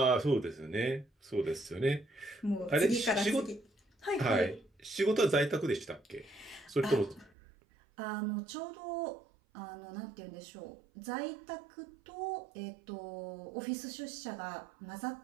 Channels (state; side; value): drops out; left; at 7.3 s